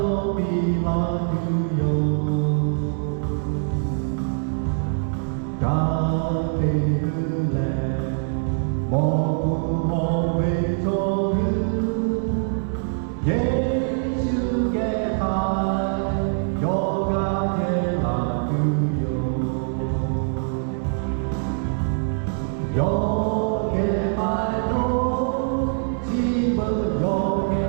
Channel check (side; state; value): left; silent; 60 dB below the other